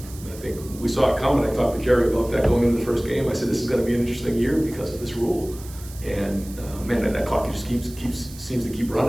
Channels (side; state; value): right; noise; hiss, 18 dB below the sound